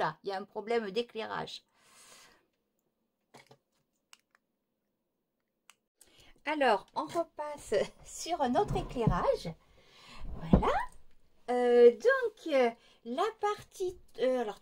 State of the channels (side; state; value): both; identical; correlation 1.00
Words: il y a un problème d'éclairage. Alors, on repasse sur notre éclairage. Voilà. La partie... alors,